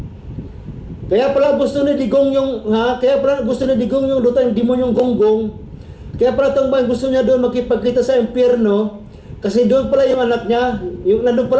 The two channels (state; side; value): identical; both; correlation 1.00